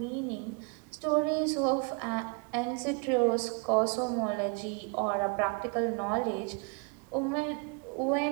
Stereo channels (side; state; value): left; quieter; 34.4 dB